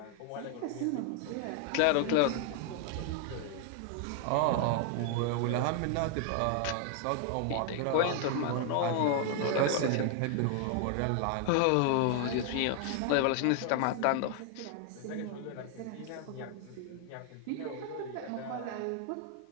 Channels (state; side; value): different; both; correlation 0.00